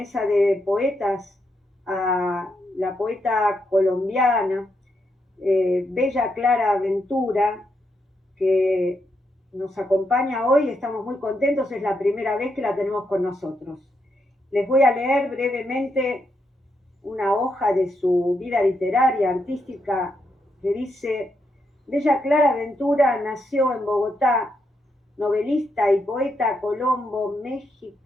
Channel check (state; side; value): normal; both; correlation 0.81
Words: de poetas a la poeta colombiana Bella Clara Ventura, que nos acompaña hoy. Estamos muy contentos, es la primera vez que la tenemos con nosotros. Les voy a leer brevemente una hoja de su vida literaria, artística, que dice: Bella Clara Ventura nació en Bogotá, novelista y poeta